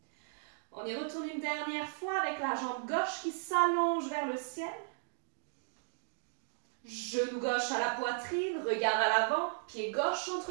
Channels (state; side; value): silent; left; digital silence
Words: On y retourne une dernière fois avec la jambe gauche qui s'allonge vers le ciel. Genou gauche à la poitrine, regard à l'avant, pied gauche